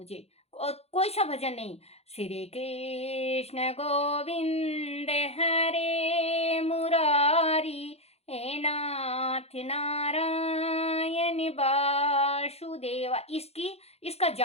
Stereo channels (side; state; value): right; late; 0.30 ms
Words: और कोई सा भजन नहीं, श्री कृष्ण गोविंद हरे मुरारी, हे नाथ नारायण वासुदेवा, इसका